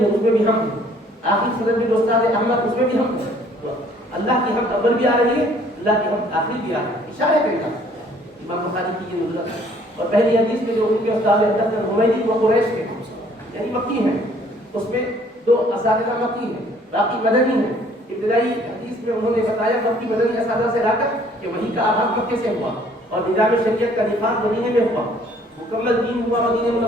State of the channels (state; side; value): normal; both; correlation 0.59